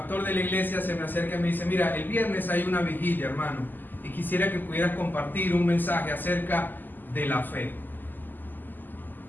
de la iglesia se me acerca y me dice: mira, el viernes hay una vigilia, hermano, y quisiera que pudieras compartir un mensaje acerca de la fe.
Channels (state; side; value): late; right; 0.088 ms